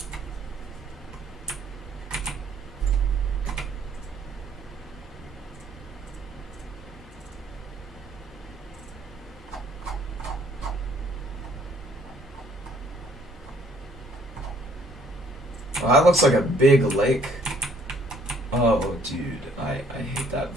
Well, that looks like a big lake. Oh, dude, I hate that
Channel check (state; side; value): normal; both; correlation 0.62